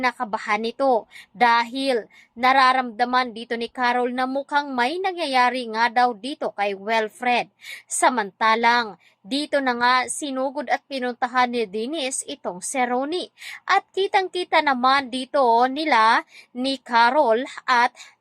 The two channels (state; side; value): identical; both; correlation 1.00